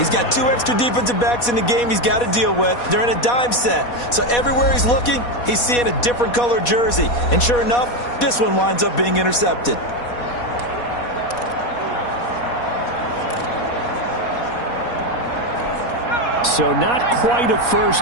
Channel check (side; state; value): right; late; 4.2 ms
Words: got 2 extra defensive backs in the game he's got to deal with. They're in a dime set. So everywhere he's looking, he's seeing a different color jersey. And sure enough, this one winds up being intercepted. So not quite a